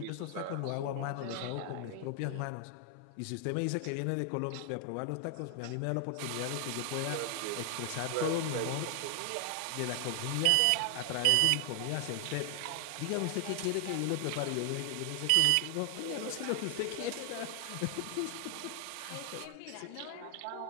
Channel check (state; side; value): different; both; correlation 0.00